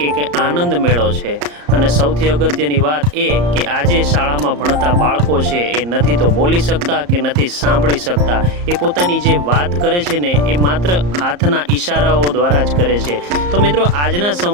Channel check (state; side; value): late; left; 34 ms